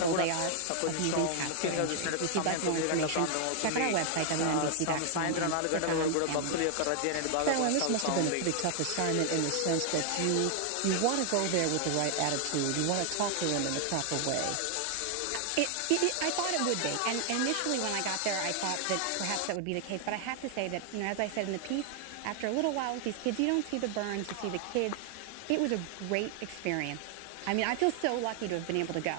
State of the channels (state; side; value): different; both; correlation 0.00